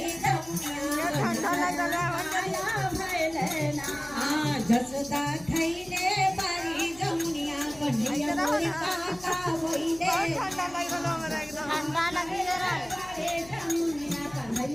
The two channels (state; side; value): noise; left; hum, 21 dB below the sound